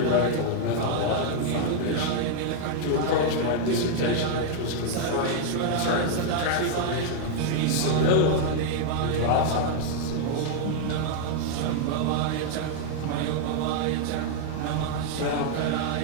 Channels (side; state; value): both; different; correlation 0.00